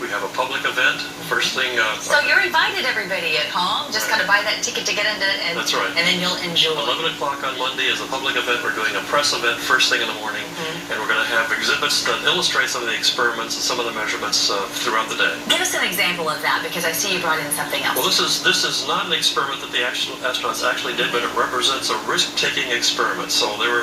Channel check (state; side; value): identical; both; correlation 1.00